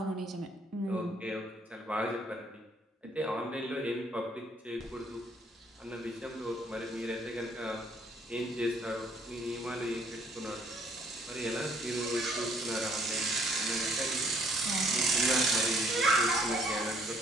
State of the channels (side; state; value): both; normal; correlation 0.63